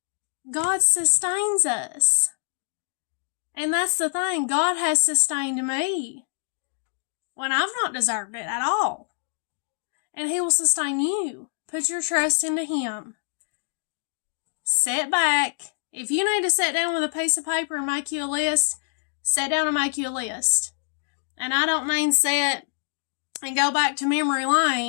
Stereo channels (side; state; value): right; silent; digital silence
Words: God sustains us. And that's the thing. God has sustained me when I've not deserved it at all. And He will sustain you. Put your trust into Him. Sit back. If you need to sit down with a piece of paper and make you a list, sit down and make you a list. And I don't mean sit and go back to memory